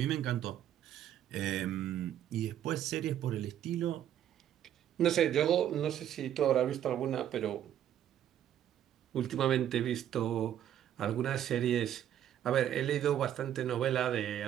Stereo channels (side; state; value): left; quieter; 10.9 dB